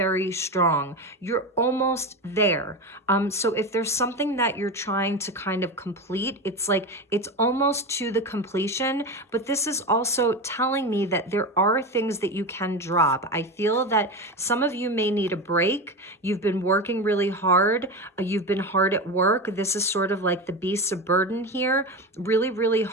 strong. You're almost there. So if there's something that you're trying to kind of complete, it's like it's almost to the completion. But this is also telling me that there are things that you can drop. I feel that some of you may need a break. You've been working really hard. You've been hard at work. This is sort of like the beast of burden here, really, really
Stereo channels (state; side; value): normal; both; correlation 0.22